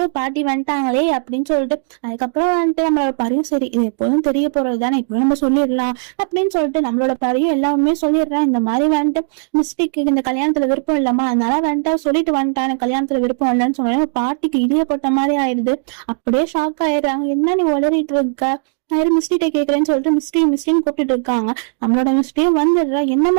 பாட்டி வந்துட்டாங்களே அப்படின்னு சொல்லிட்டு அதுக்கப்புறம் வந்துட்டு நம்மளோட பரியும் சரி இது எப்போதும் தெரிய போறது தானே இப்போ நம்ம சொல்லிடலாம் அப்படின்னு சொல்லிட்டு நம்மளோட பரியும் எல்லாமே சொல்லிடுறேன். இந்த மாதிரி வந்துட்டு மிஸ்டேக்கு இந்த கல்யாணத்துல விருப்பம் இல்லாமா அதனால வந்துட்டு சொல்லிட்டு வந்துட்டான் கல்யாணத்துல விருப்பம் இல்லைன்னு சொன்னாலும் பாட்டிக்கு இடிய போட்ட மாதிரி ஆயிடுது. அப்படியே ஷாக் ஆயிடுறாங்க. என்ன நீ உளறிட்டு இருக்க நான் மிஸ்டிட்ட கேக்குறேன்னு சொல்லிட்டு மிஸ்டின்னு கூப்பிட்டு இருக்காங்க. நம்மளோட மிஸ்டியும் வந்துடுறா.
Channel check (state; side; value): silent; left; digital silence